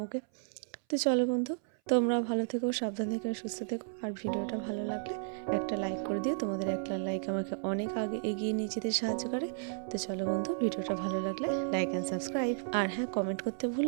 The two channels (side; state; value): left; silent; 56 dB below the other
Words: ওকে। তো চলো বন্ধু, তোমরা ভালো থেকো, সাবধান থেকো, সুস্থ থেকো। আর ভিডিওটা ভালো লাগলে একটা লাইক করে দিও, তোমাদের একটা লাইক আমাকে অনেক আগে এগিয়ে নিয়ে যেতে সাহায্য করে। তো চলো বন্ধু, ভিডিওটা ভালো লাগলে লাইক অ্যান্ড সাবস্ক্রাইব, আর হ্যাঁ কমেন্ট করতে